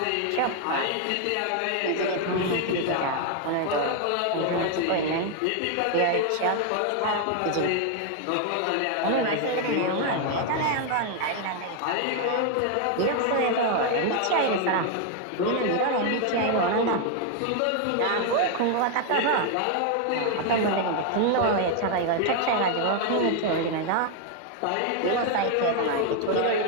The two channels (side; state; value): both; different; correlation 0.01